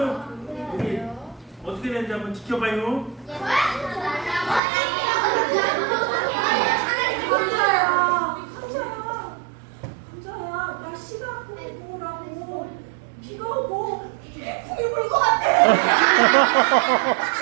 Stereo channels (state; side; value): drops out; left; at 4.6 s